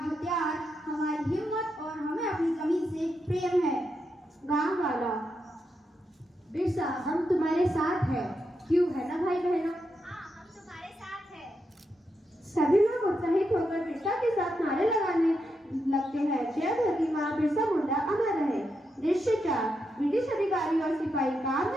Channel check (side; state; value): both; normal; correlation 0.84